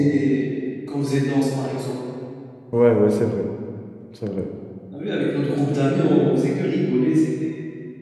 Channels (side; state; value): both; identical; correlation 1.00